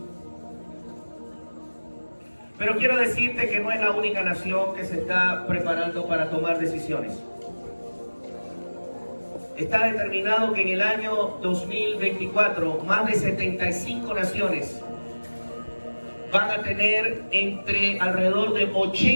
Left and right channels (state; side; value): inverted; both; correlation -1.00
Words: Pero quiero decirte que no es la única nación que se está preparando para tomar decisiones. Está determinado que en el año 2024 más de 75 naciones van a tener entre alrededor de